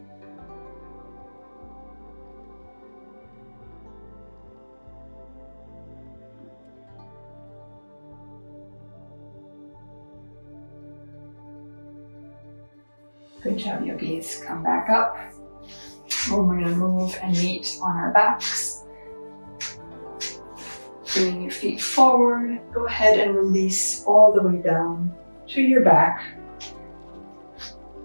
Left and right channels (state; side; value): inverted; both; correlation -1.00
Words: Good job, yogis. Come back up. We're going to move and meet on our backs. Bringing your feet forward. Go ahead and release all the way down to your back.